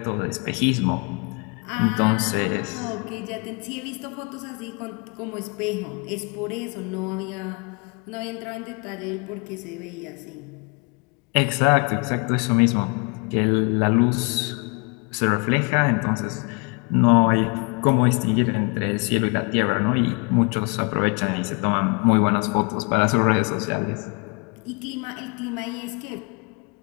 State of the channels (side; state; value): right; quieter; 32.8 dB